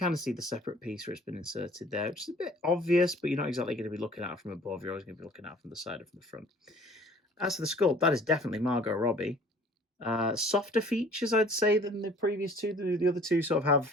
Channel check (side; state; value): both; normal; correlation 0.52